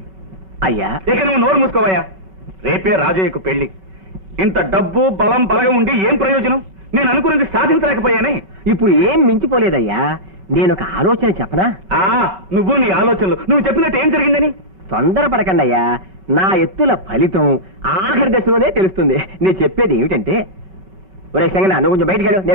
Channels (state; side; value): late; left; 5.3 ms